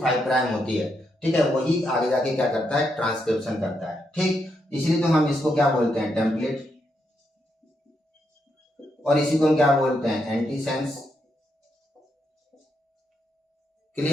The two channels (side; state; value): both; normal; correlation 0.80